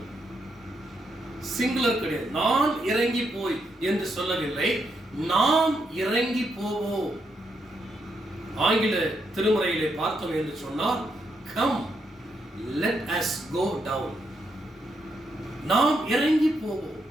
சிங்குலர் கிடையாது. நான் இறங்கி போய் என்று சொல்லவில்லை, நாம் இறங்கி போவோம். ஆங்கில திருமுறையிலே பார்த்தோம் என்று சொன்னால், come let us go down. நாம் இறங்கி போவோம்.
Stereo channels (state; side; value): normal; both; correlation 0.80